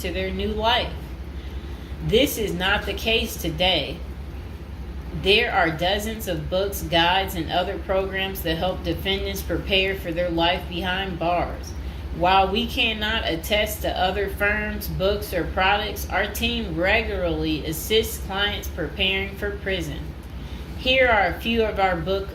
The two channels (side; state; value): both; identical; correlation 1.00